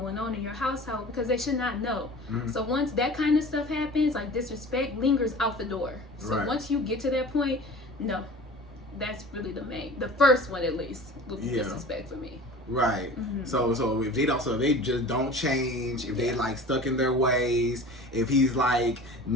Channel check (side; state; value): both; normal; correlation 0.40